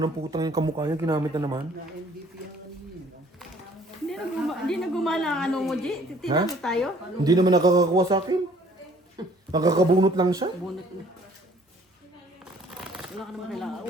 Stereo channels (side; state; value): both; normal; correlation 0.57